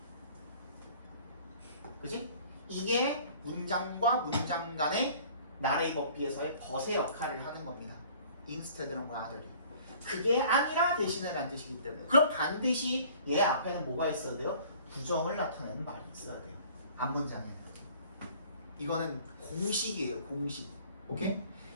그지? 이게 문장과 문장 간의 나의 법비에서의 벗의 역할을 하는 겁니다. instead랑 rather이. 그게 아니라 대신에라는 뜻이기 때문에. 그럼 반드시 얘 앞에는 뭐가 있어야 돼요? 부정을 나타내는 말이 있어야 돼요. 앞문장에. 이거는 공식이에요. 공식. 오케이?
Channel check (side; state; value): both; inverted; correlation -0.51